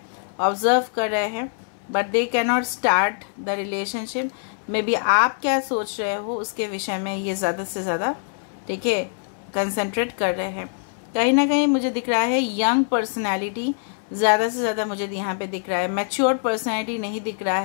ऑब्जर्व कर रहे हैं, but they can not start the relationship. May be आप क्या सोच रहे हो उसके विषय में ये ज़्यादा से ज़्यादा, ठीक है, कंसंट्रेट कर रहे हैं। कहीं ना कहीं मुझे दिख रहा है यंग पर्सनैलिटी ज़्यादा से ज़्यादा मुझे यहाँ पे दिख रहा है। मैच्योर पर्सनैलिटी नहीं दिख रहा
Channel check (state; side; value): silent; right; 61 dB below the other